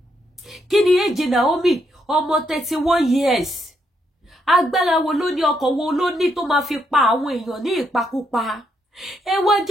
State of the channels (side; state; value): both; normal; correlation 0.77